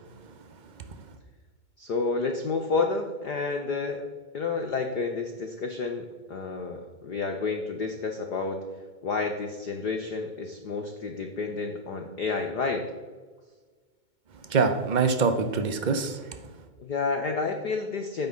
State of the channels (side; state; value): right; late; 2.2 ms